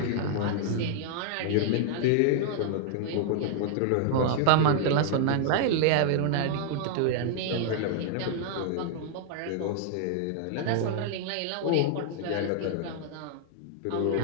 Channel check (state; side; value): different; both; correlation -0.01